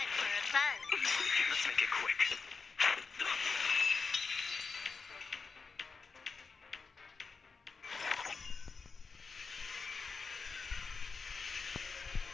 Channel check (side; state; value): right; quieter; 4.8 dB